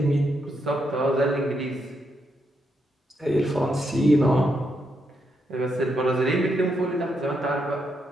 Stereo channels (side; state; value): both; normal; correlation 0.80